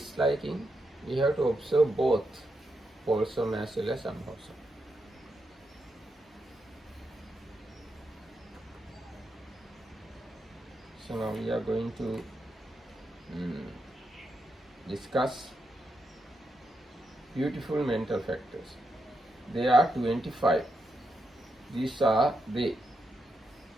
we have to observe both wholesome as well as unwholesome. So now we are going to discuss beautiful mental factors. There are 25. These are the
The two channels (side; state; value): both; normal; correlation 0.84